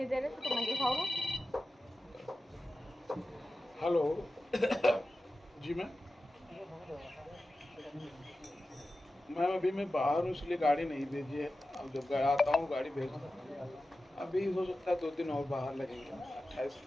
दे रहे तो तुम मैगी खाओगे? हेलो जी मैं बाहर हूँ इसलिए गाड़ी नहीं भेजी है। अब जब आता हूँ गाड़ी भेज दूँगा। अभी हो सकता है 2 दिन और बाहर लगेंगे। 28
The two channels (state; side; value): normal; both; correlation 0.93